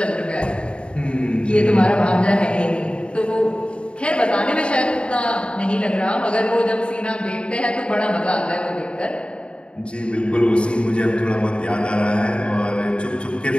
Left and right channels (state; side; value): late; right; 0.055 ms